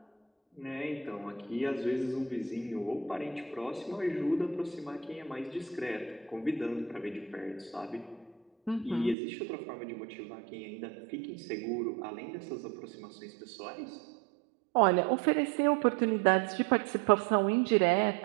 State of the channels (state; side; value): drops out; left; at 9.2 s